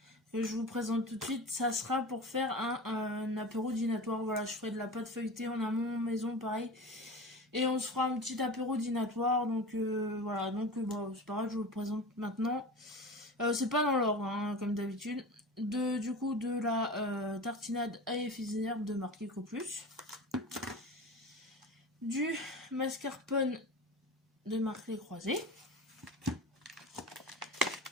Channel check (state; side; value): normal; both; correlation 0.31